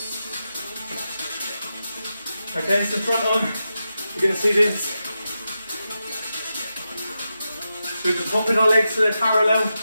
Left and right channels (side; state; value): both; inverted; correlation -0.89